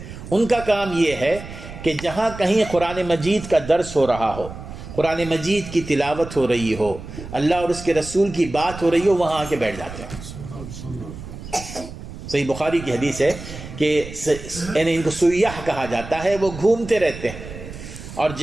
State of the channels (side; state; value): right; noise; rumble, 12 dB below the sound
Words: ان کا کام یہ ہے کہ جہاں کہیں قرآن مجید کا درس ہو رہا ہو، قرآن مجید کی تلاوت ہو رہی ہو، اللہ اور اس کے رسول کی بات ہو رہی ہو، وہاں آ کے بیٹھ جاتے ہیں۔ صحیح بخاری کی حدیث ہے کہ ان کو سیاح کہا جاتا ہے، وہ گھومتے رہتے ہیں، اور